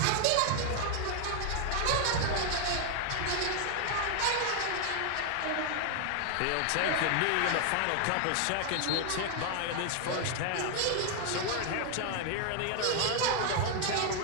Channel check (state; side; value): different; both; correlation 0.00